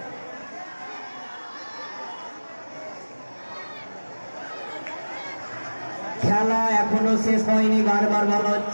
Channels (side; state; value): both; inverted; correlation -1.00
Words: খেলা এখনো শেষ হয়নি, বারবার বলা